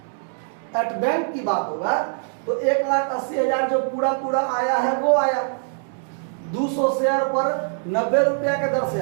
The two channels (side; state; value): left; silent; digital silence